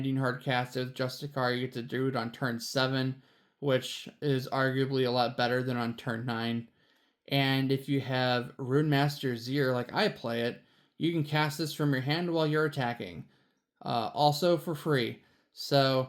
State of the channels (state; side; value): identical; both; correlation 1.00